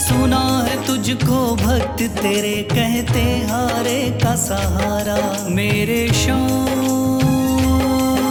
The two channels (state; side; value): identical; both; correlation 1.00